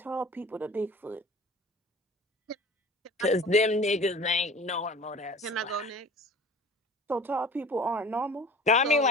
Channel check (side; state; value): both; normal; correlation 0.42